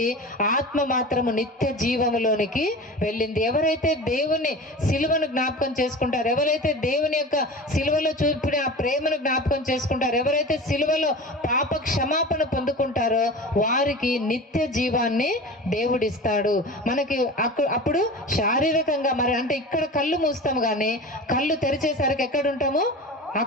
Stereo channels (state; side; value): normal; both; correlation 0.33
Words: ఆత్మ మాత్రము నిత్య జీవములోనికి వెళ్ళింది. ఎవరైతే దేవుని సిలువను జ్ఞాపకం చేసుకుంటారో, ఎవరైతే దేవుని యొక్క సిలువలో చూపిన ఆ ప్రేమను జ్ఞాపకం చేసుకుంటారో, ఎవరైతే సిలువలో పాప క్షమాపణ పొందుకుంటారో వారికి నిత్య జీవాన్ని దేవుడిస్తాడు. మనకి అప్పుడు శారీరకంగా మరి అంటే ఇక్కడ కళ్ళు మూస్తాము కానీ కళ్ళు తెరిచేసరికి ఎక్కడ ఉంటాము?